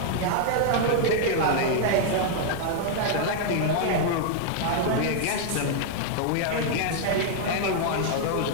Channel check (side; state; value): both; different; correlation -0.01